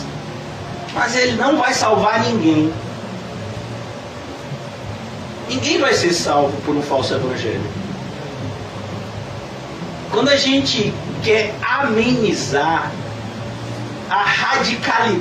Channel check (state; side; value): identical; both; correlation 1.00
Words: mas ele não vai salvar ninguém. Ninguém vai ser salvo por um falso Evangelho. Quando a gente quer amenizar a